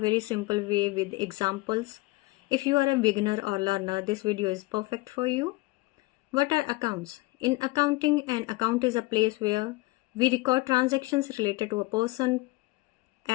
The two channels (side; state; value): right; quieter; 21.7 dB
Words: simple way with examples. If you are a beginner or learner, this video is perfect for you. What are accounts? In accounting, an account is a place where we record transactions related to a person,